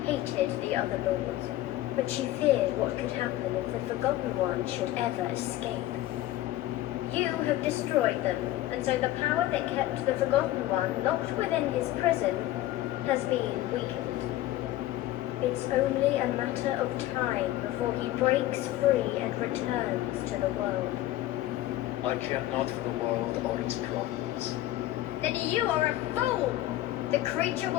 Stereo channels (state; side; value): quieter; right; 15.2 dB